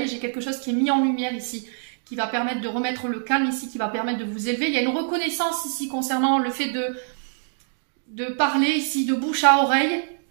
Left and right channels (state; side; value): silent; left; digital silence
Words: J'ai quelque chose qui est mis en lumière ici, qui va permettre de remettre le calme ici, qui va permettre de vous élever. Il y a une reconnaissance ici concernant le fait de parler ici de bouche à oreille.